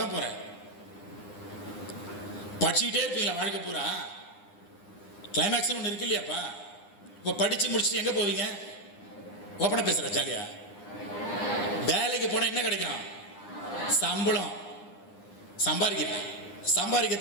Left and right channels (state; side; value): late; right; 9.8 ms